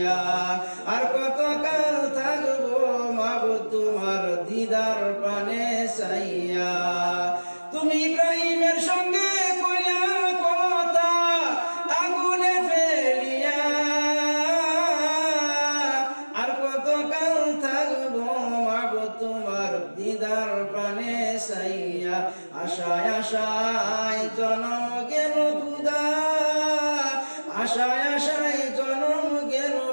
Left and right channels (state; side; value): inverted; both; correlation -1.00